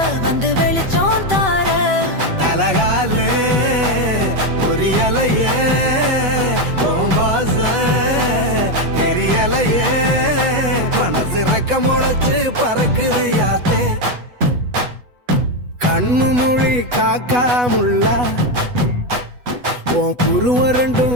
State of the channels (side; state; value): left; late; 8.1 ms